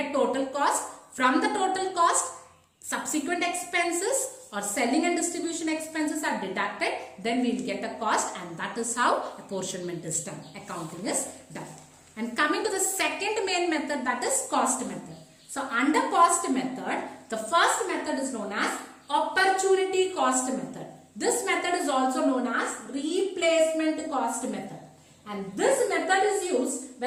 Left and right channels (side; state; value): both; identical; correlation 1.00